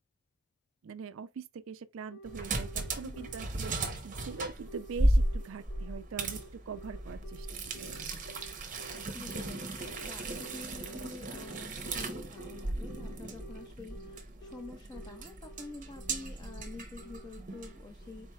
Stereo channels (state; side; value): normal; both; correlation 0.71